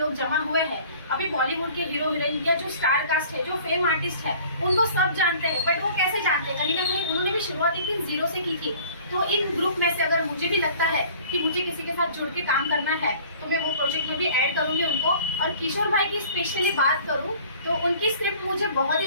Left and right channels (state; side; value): inverted; both; correlation -0.50